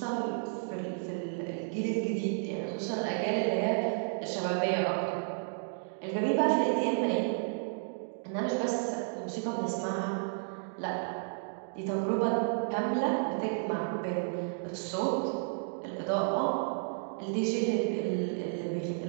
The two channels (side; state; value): left; silent; digital silence